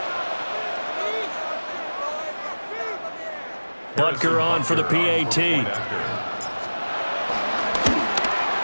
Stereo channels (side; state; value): both; inverted; correlation -1.00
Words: Butker on for the PAT.